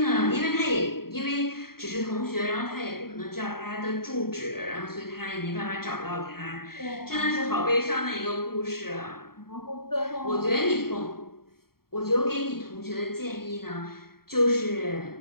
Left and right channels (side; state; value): right; late; 0.94 ms